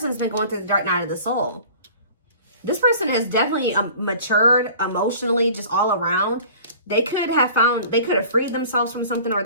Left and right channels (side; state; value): both; inverted; correlation -0.45